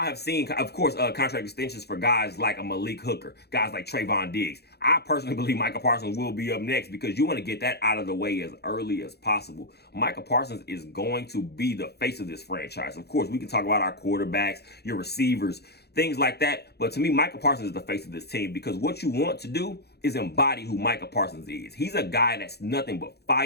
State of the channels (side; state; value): right; late; 0.47 ms